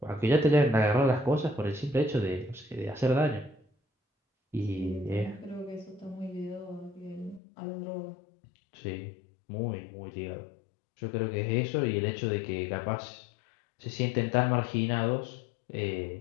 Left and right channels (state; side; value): drops out; right; at 7.4 s